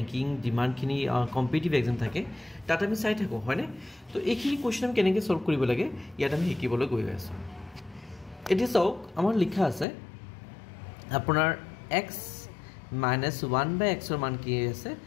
ডিমান্ডখিনি কম্পিটিটিভ এক্সাম থাকে তাত আমি চাই থাকো হয়নে তো এইখিনি কোৱেশ্চন আমি কেনেকৈ সলভ কৰিব লাগে ইয়াত আমি শিকিবলৈ গৈ আছো এতিয়া চাওক আমাৰ লিখা আছে আপোনাৰ x - 1 / x ৰ মান কি আছে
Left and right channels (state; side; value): drops out; right; at 9.9 s